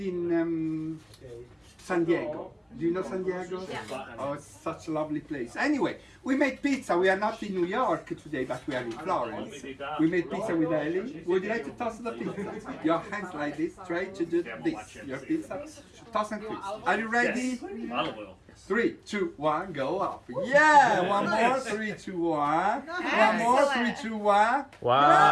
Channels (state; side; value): identical; both; correlation 1.00